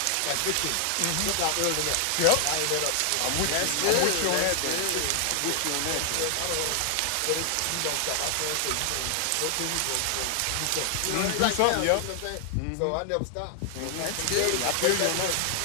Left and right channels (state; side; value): different; both; correlation 0.00